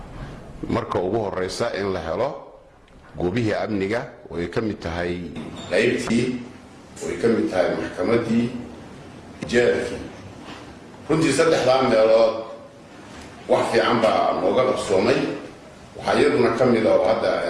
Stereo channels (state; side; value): identical; both; correlation 1.00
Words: marka ugu horeysa in la helo goobihii amniga oo ay ka mid tahay qaybtii oo ay ka mid tahay maxkamadii jeelkii runtii 3 meelood wax fiican baa nooga qabsoomay waxaa iyaduna ka mid ah hadda